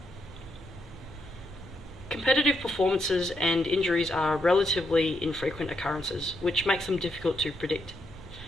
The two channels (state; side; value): normal; both; correlation 0.79